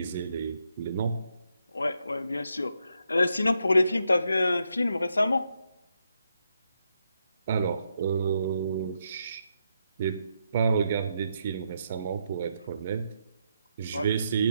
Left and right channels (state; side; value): inverted; both; correlation -0.80